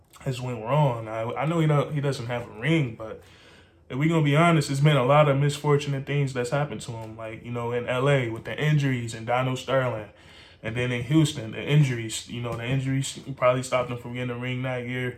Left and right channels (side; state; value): both; identical; correlation 1.00